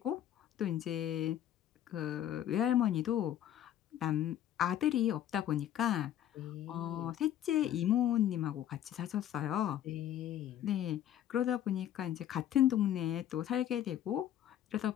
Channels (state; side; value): quieter; right; 11.2 dB